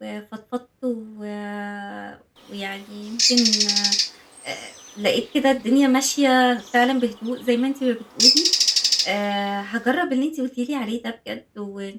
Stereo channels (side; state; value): both; identical; correlation 1.00